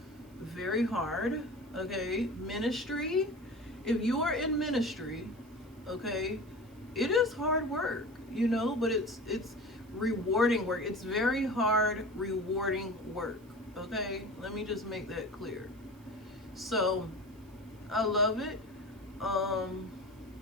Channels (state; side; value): noise; right; hiss, 30 dB below the sound